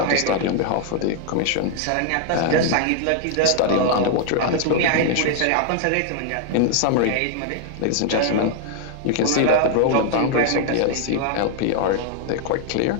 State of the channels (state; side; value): different; both; correlation 0.00